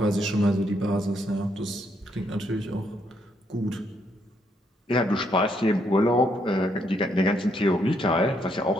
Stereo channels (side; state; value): both; normal; correlation 0.74